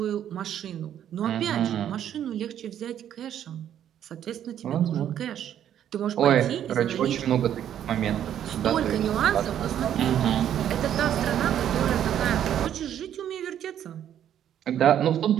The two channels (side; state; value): left; quieter; 10.3 dB